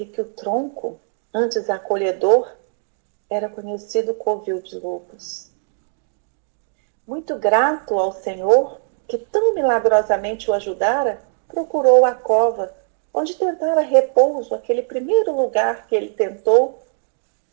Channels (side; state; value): left; silent; digital silence